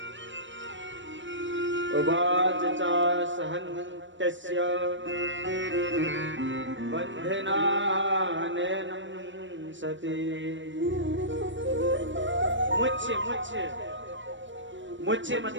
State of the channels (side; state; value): left; late; 0.55 ms